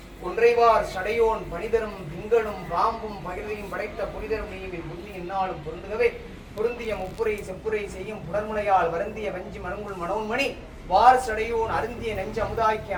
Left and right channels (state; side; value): identical; both; correlation 1.00